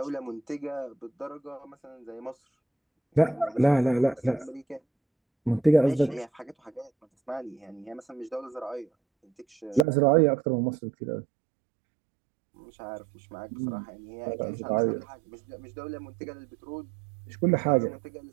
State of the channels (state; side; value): drops out; left; at 9.9 s